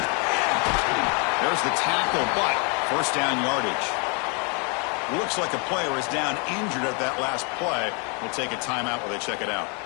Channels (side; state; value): right; quieter; 35.1 dB